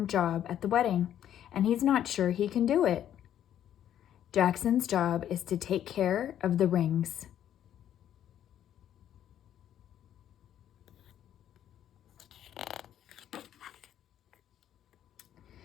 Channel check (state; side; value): quieter; right; 10.7 dB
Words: job at the wedding, and he's not sure he can do it. Jackson's job is to take care of the rings.